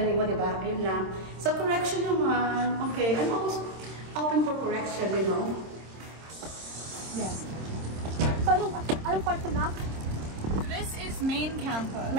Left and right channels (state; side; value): late; left; 26 ms